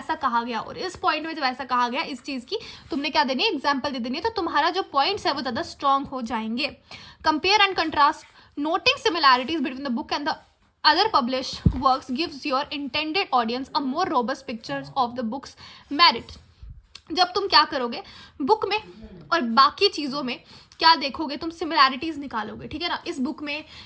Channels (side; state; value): both; identical; correlation 1.00